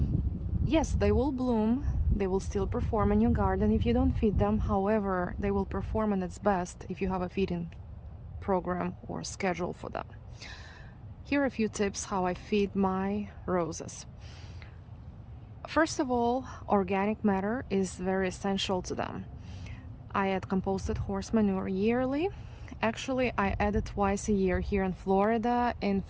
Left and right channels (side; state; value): both; identical; correlation 1.00